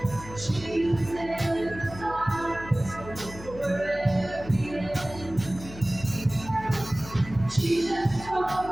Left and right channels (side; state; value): left; noise; hum, 14 dB below the sound